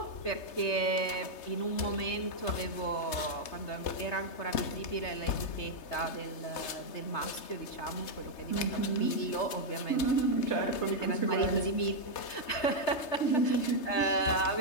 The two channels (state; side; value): late; right; 3.3 ms